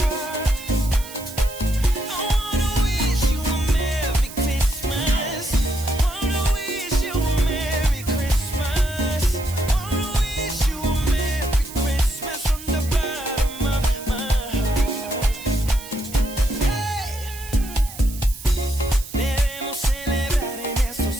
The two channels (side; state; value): right; noise; hiss, 14 dB below the sound